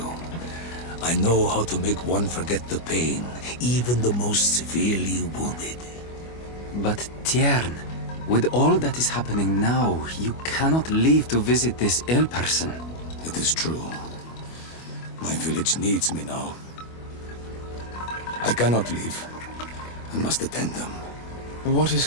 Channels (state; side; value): late; right; 25 ms